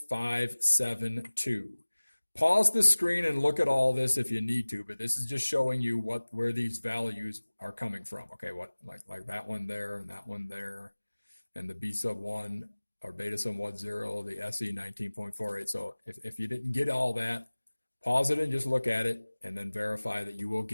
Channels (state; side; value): inverted; both; correlation -1.00